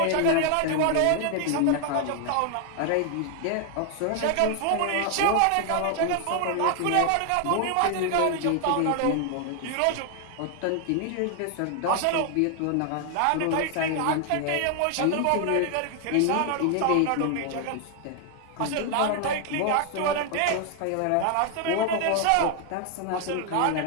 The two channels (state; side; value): different; both; correlation 0.00